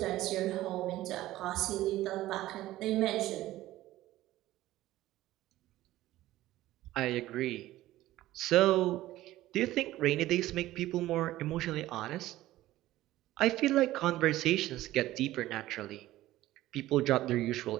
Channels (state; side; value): quieter; left; 15.6 dB